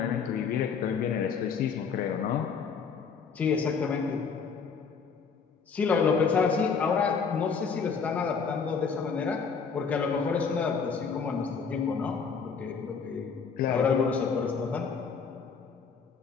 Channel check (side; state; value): right; quieter; 5.8 dB